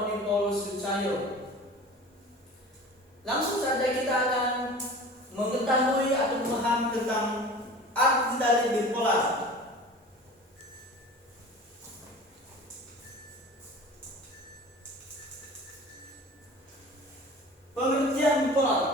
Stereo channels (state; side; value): normal; both; correlation 0.39